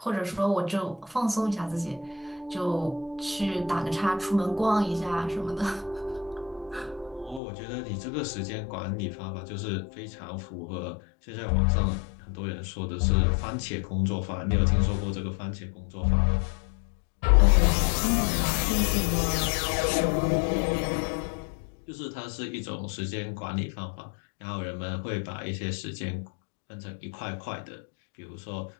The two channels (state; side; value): drops out; right; at 7.4 s